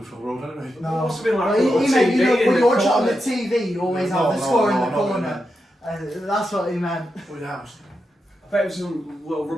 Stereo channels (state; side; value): normal; both; correlation 0.87